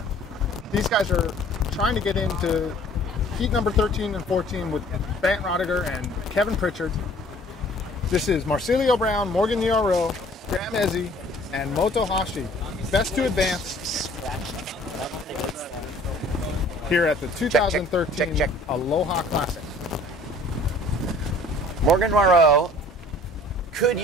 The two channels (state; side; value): normal; both; correlation 0.53